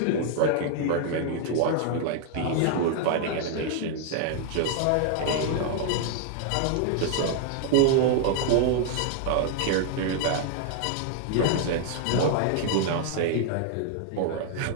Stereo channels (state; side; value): different; both; correlation 0.00